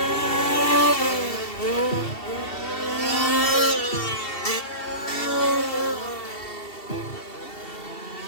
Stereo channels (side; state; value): right; late; 2.7 ms